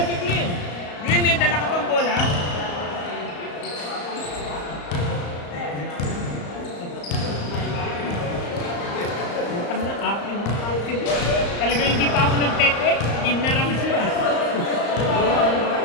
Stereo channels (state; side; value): late; right; 35 ms